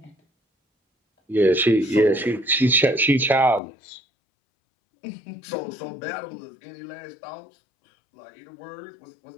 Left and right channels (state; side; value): drops out; right; at 3.6 s